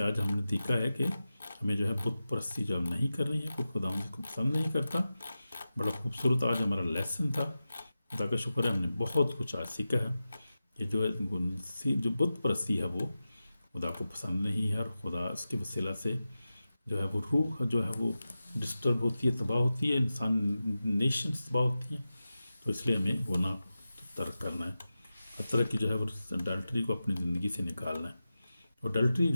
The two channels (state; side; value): inverted; both; correlation -0.93